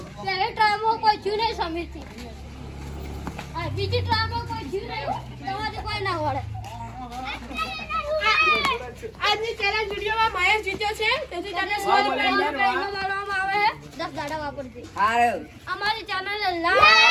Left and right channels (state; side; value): identical; both; correlation 1.00